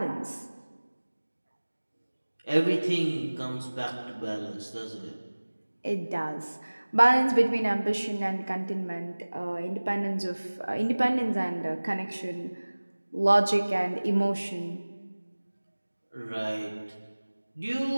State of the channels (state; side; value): inverted; both; correlation -1.00